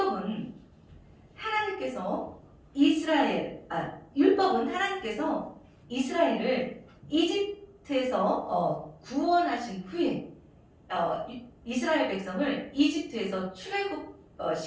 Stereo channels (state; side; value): identical; both; correlation 1.00